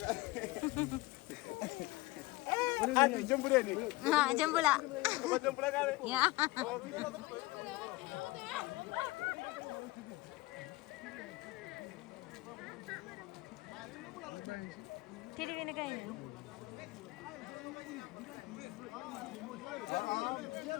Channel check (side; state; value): right; quieter; 20.7 dB